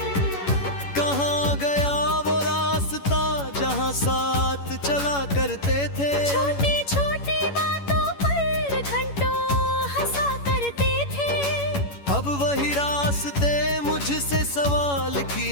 कहाँ गया वो रास्ता जहाँ साथ चला करते थे। छोटी छोटी बातों पर घंटों हंसा करते थे। अब वही रास्ते मुझसे सवाल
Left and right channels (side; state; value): right; late; 11 ms